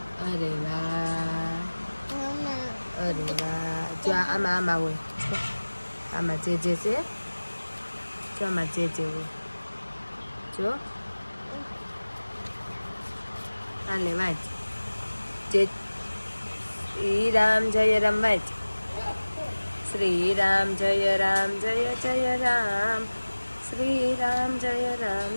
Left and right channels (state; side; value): inverted; both; correlation -1.00